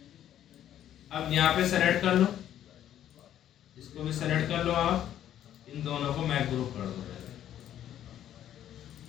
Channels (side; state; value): right; quieter; 11.2 dB